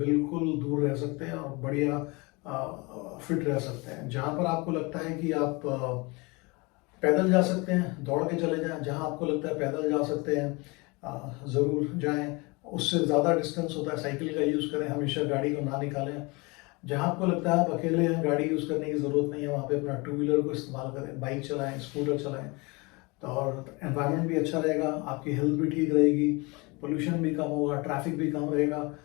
दूर रह सकते हैं और बढ़िया फिट रह सकते हैं। जहाँ पर आपको लगता है कि आप पैदल जा सकते हैं, दौड़ के चले जाएं। जहाँ आपको लगता है पैदल जा सकते हैं, ज़रूर जाएं। उससे ज़्यादा डिस्टेंस होता है, साइकिल का यूज़ करें, हमेशा गाड़ी को ना निकालें। जहाँ आपको लगता है आप अकेले हैं, गाड़ी यूज़ करने की ज़रूरत नहीं है, वहाँ पे अपना टू व्हीलर को इस्तेमाल करें, बाइक चलाएं, स्कूटर चलाएं। तो और एनवायरनमेंट भी अच्छा रहेगा, आपकी हेल्थ भी ठीक रहेगी, पोल्यूशन भी कम होगा, ट्रैफिक भी कम रहेगा।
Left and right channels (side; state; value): right; quieter; 26.7 dB